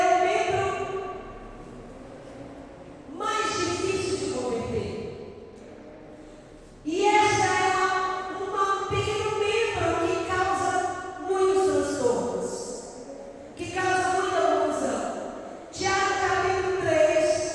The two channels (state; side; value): identical; both; correlation 1.00